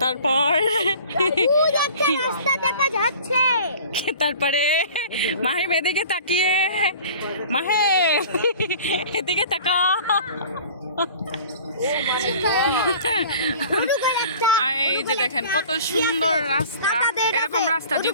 তারপর রাস্তা দেখা যাচ্ছে। তারপরে মাহিম এদিকে তাকিয়ে, মাহে এদিকে তাকাও। এই যে দেখেন কত সুন্দর রাস্তা, এরকম রাস্তা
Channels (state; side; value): inverted; both; correlation -0.44